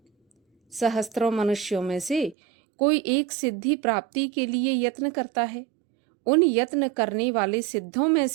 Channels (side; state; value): left; drops out; at 2.4 s